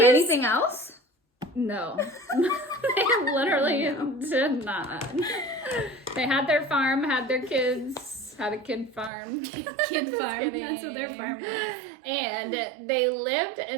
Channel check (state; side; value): drops out; left; at 9.1 s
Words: anything else? No. They literally did not. They had their farm, had their kids, had a kid farm. Kid farm. That's what their farm was. And they lived